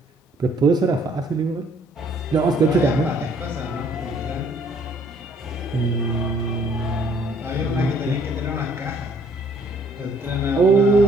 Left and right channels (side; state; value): both; normal; correlation 0.61